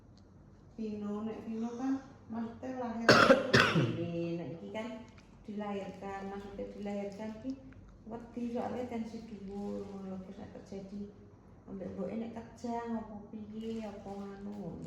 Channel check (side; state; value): both; identical; correlation 1.00